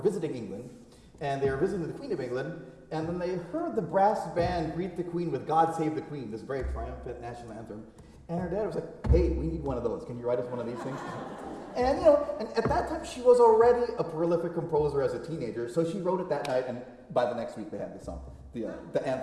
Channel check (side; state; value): both; identical; correlation 1.00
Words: England, and they were visiting the Queen of England, and then they heard the brass band greet the Queen with God Save the Queen, this very triumphant national anthem. And her dad was like, hey, we need one of those. Can you write us one of these things? And and at that time she was already a prolific composer as a teenager, so she wrote it that night, and by the next week they had the song, the